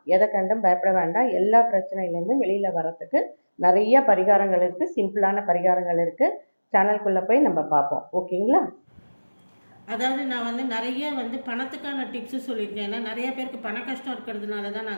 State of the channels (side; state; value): both; inverted; correlation -1.00